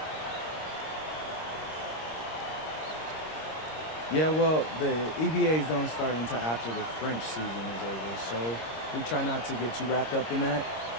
Yeah, well, the EBAs don't start until after the French season is over, so we try not to get too wrapped up in that.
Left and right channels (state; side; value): late; right; 26 ms